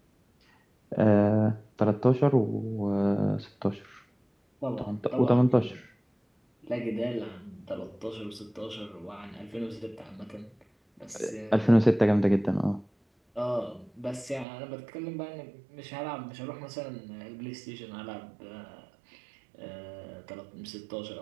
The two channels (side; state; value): left; drops out; at 14.5 s